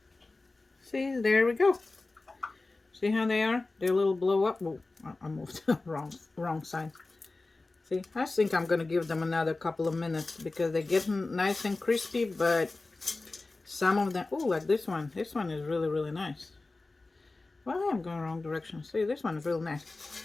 See, there we go. See how they are? They're a little blow up. Well, I moved wrong side. See, I think I'm gonna give them another couple of minutes because they're getting nice and crispy, but some of them, oh, like this one. This one is really nice. Well, I'm going wrong direction. See, this one is real nice.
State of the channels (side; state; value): right; quieter; 3.3 dB